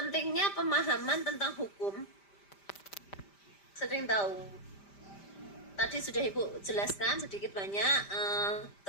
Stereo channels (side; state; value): right; late; 5.1 ms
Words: pemahaman tentang hukum, sering tahu. Tadi sudah Ibu jelaskan sedikit banyak,